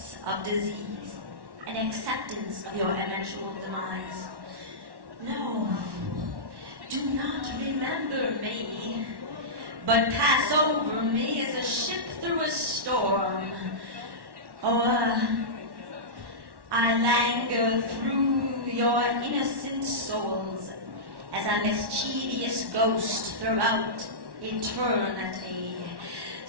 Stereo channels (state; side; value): late; left; 1.1 ms